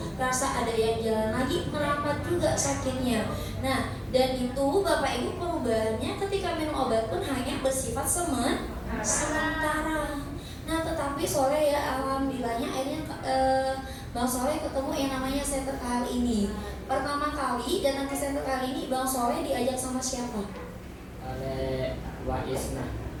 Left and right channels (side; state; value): both; identical; correlation 1.00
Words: kerasa ada yang jalan lagi, merambat juga sakitnya. Nah, dan itu Bapak Ibu perubahannya ketika minum obat pun hanya bersifat sementara. Nah, tetapi Soleh ya alhamdulillahnya akhirnya Bang Soleh ketemu yang namanya Center KHL ini. Pertama kali datang ke Center KHL ini, Bang Soleh diajak sama siapa? Oleh Wak Isna.